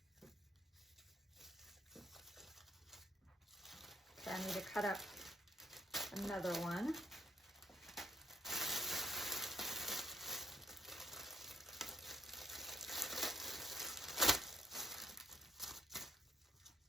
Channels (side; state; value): both; normal; correlation 0.72